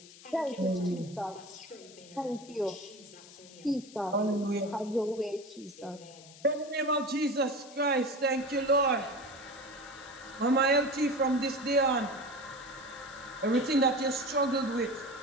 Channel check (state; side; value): noise; left; hiss, 20 dB below the sound